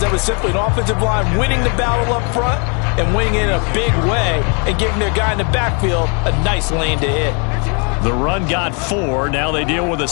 That was simply an offensive line winning the battle up front and winning it in a big way and giving their guy in the backfield a nice lane to hit. The run got 4. Now they deal with a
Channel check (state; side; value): quieter; right; 36.6 dB